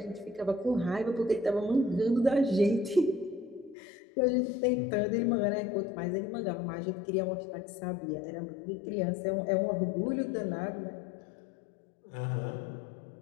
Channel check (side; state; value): right; drops out; at 3.8 s